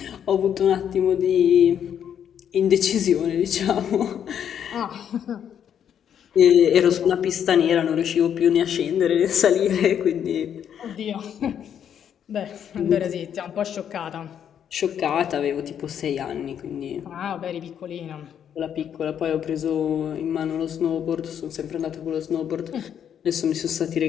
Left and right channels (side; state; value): right; quieter; 8.9 dB